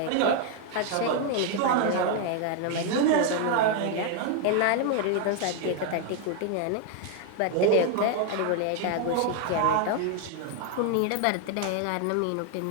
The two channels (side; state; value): both; different; correlation 0.00